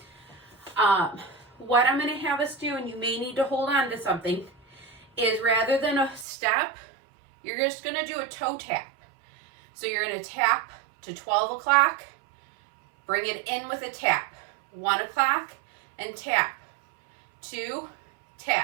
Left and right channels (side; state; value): left; drops out; at 6.2 s